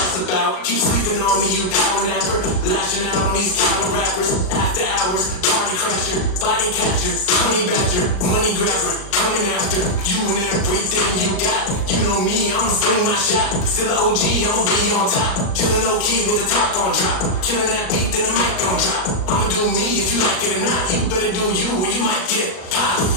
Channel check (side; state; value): right; late; 38 ms